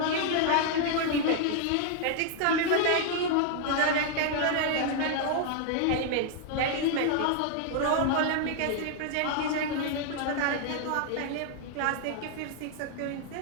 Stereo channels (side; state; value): both; different; correlation 0.00